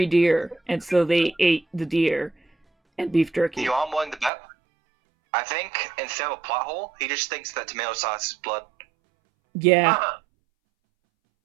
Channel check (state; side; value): drops out; left; at 4.3 s